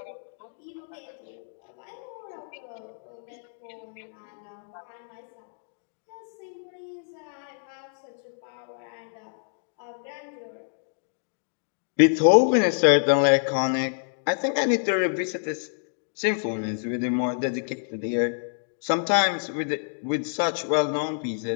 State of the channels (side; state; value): right; silent; digital silence